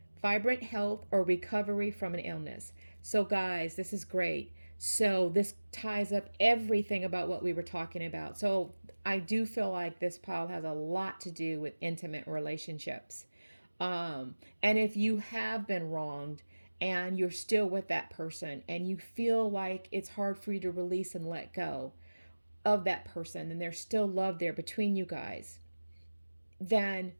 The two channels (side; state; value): both; inverted; correlation -1.00